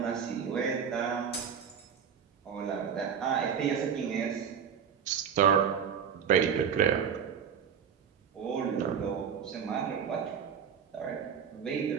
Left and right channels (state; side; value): quieter; left; 7.5 dB